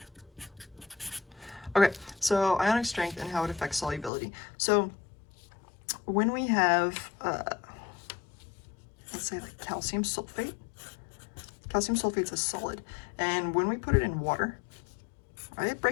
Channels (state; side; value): drops out; right; at 4.1 s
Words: Okay, so ionic strength and how it affects solubility. So when we have, let's say like calcium sulfate is a solid, and when we put it in water, right, it